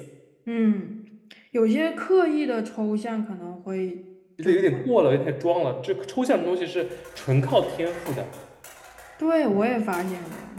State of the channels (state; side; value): identical; both; correlation 1.00